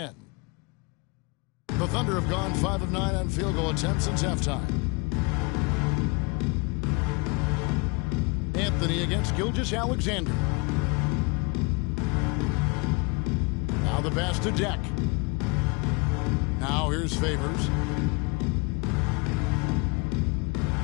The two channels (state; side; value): quieter; right; 29.7 dB